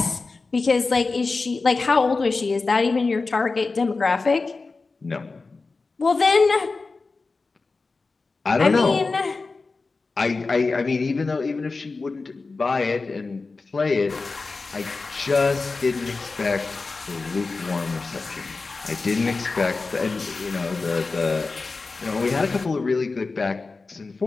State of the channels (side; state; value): right; quieter; 3.9 dB